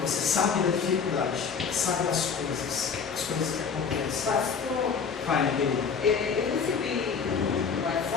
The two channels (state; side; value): quieter; right; 6.0 dB